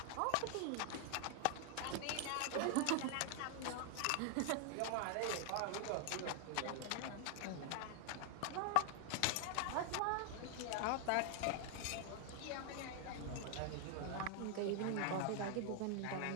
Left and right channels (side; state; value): both; different; correlation 0.00